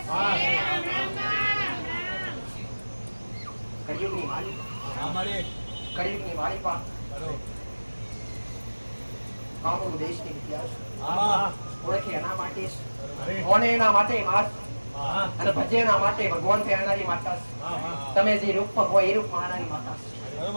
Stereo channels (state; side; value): inverted; both; correlation -1.00